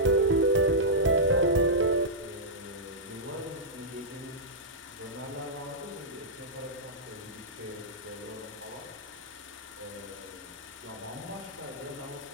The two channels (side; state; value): both; normal; correlation -0.11